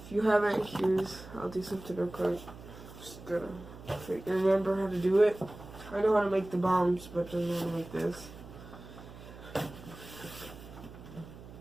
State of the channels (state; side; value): noise; right; hum, 16 dB below the sound